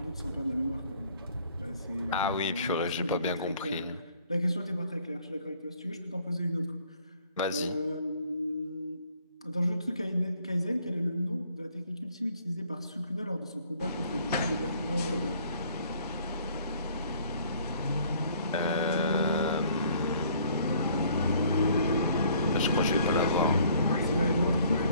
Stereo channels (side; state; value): both; inverted; correlation -0.60